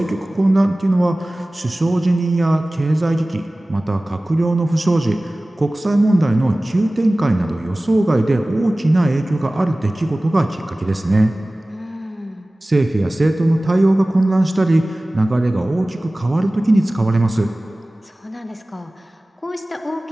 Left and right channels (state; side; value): normal; both; correlation 0.98